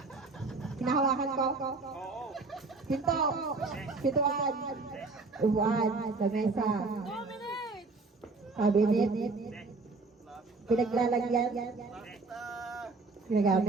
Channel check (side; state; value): left; quieter; 3.8 dB